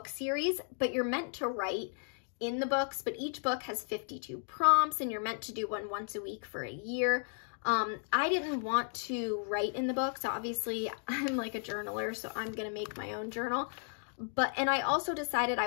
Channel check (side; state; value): right; silent; 55 dB below the other